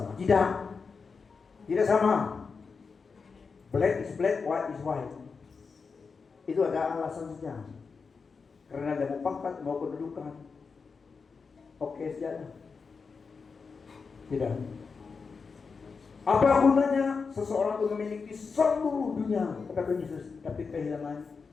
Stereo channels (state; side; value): quieter; right; 5.0 dB